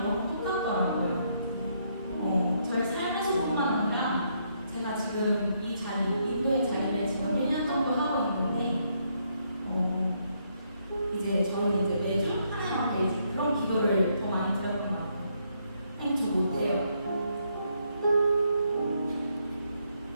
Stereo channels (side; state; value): both; inverted; correlation -0.75